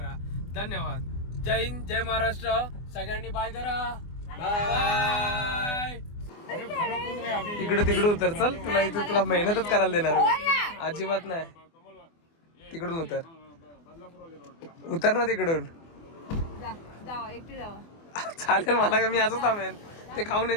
धन्यवाद. जय हिंद, जय महाराष्ट्र. सगळ्यांनी बाय करा. बाय. तिकडून उतर. चल तुला इथे तुला मेहनतच करायला देणार अजिबात नाही. तिकडून उतर ना तिकडून. जावा एकटी जावा. चालेल मला का, मी असंच थांबेन. ते खाऊन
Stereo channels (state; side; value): late; right; 24 ms